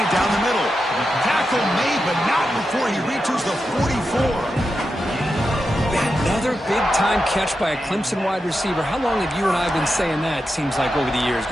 down the middle. Tackle made, but not before he reaches the 44. Another big-time catch by a Clemson wide receiver. How long have you and I been saying that, seems like, over the years?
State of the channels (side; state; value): both; normal; correlation 0.89